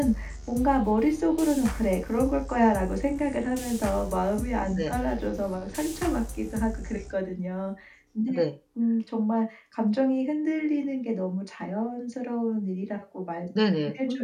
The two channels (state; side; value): identical; both; correlation 1.00